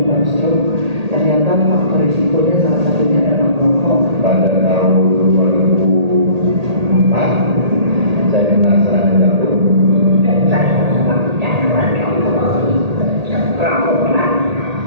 stroke. Ternyata faktor risikonya salah satunya adalah merokok. Pada tahun 2004 saya kena serangan jantung. Saya sangat gangguan rokok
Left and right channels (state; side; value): late; left; 1.8 ms